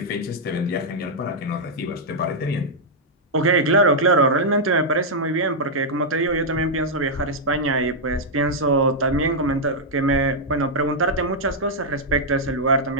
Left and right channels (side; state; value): both; normal; correlation -0.05